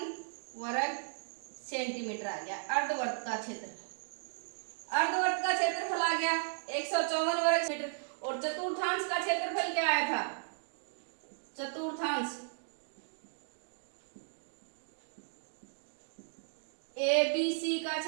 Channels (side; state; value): left; silent; digital silence